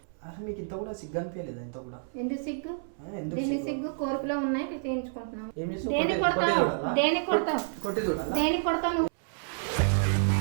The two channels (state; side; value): silent; left; 58 dB below the other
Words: అసలు మీకు ఇంత కూడా సిగ్గు అనిపించలేదా ఇంత కూడా ఎందుకు సిగ్గు ఎందుకు సిగ్గు కోరికలో ఉన్నాయి తీయించుకుంటున్నాం ఏమి కొడతావు